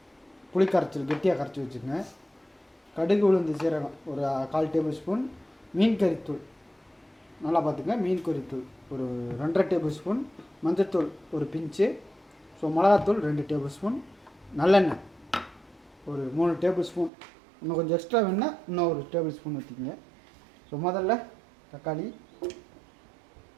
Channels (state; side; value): drops out; left; at 17.1 s